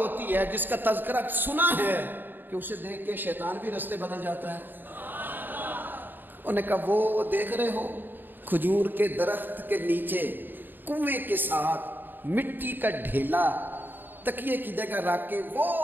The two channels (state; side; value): late; left; 0.092 ms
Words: ہے، جس کا تذکرہ سنا ہے کہ اسے دیکھ کے شیطان بھی رستے بدل جاتا ہے؟ انہوں نے کہا وہ دیکھ رہے ہو کھجور کے درخت کے نیچے کنویں کے ساتھ مٹی کا ڈھیلا تکیے کی جگہ رکھ کے وہ